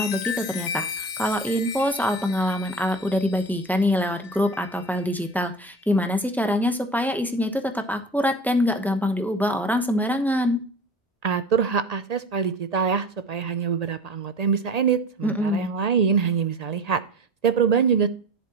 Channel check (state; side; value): normal; both; correlation 0.38